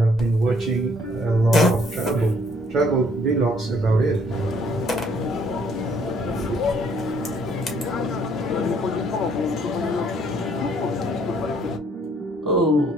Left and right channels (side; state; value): both; normal; correlation 0.64